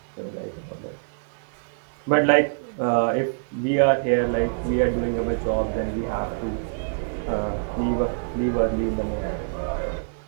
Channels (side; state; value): left; silent; digital silence